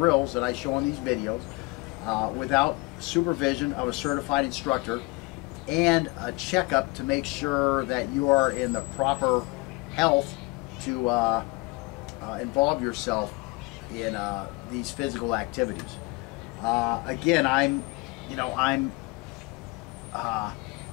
that I show on these videos without supervision of a certified instructor and a checkup to make sure that you are in the proper health to involve yourself in these physical activities. Again, I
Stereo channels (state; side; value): quieter; right; 25.5 dB